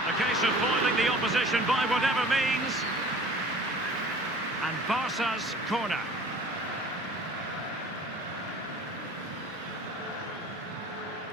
A case of foiling the opposition by whatever means. And Barça's corner.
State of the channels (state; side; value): normal; both; correlation 0.46